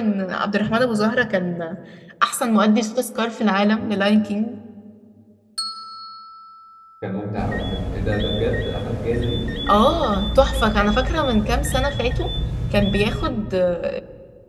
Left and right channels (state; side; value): identical; both; correlation 1.00